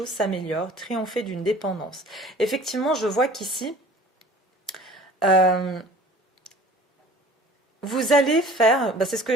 s'améliorent. Triomphez d'une dépendance. Effectivement, je vois qu'ici, vous allez faire, c'est ce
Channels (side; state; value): both; normal; correlation 0.46